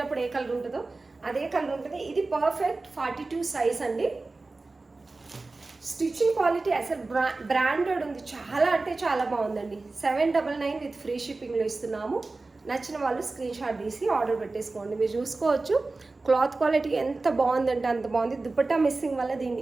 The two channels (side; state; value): left; quieter; 3.5 dB